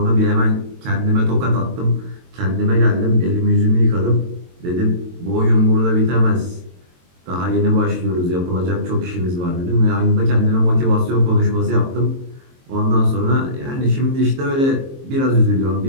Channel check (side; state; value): left; late; 22 ms